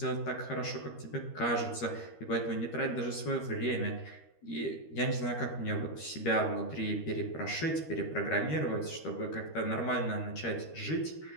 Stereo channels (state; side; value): late; right; 13 ms